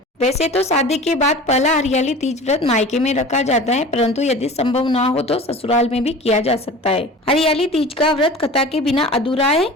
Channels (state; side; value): normal; both; correlation 0.38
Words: वैसे तो शादी के बाद पहला हरियाली तीज व्रत मायके में रखा जाता है, परंतु यदि संभव ना हो तो ससुराल में भी किया जा सकता है। हरियाली तीज का व्रत कथा के बिना अधूरा है,